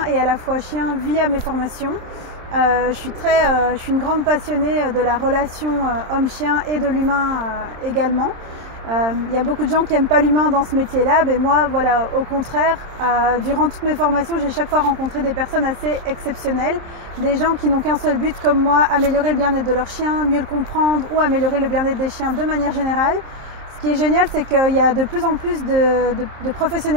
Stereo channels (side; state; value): left; late; 27 ms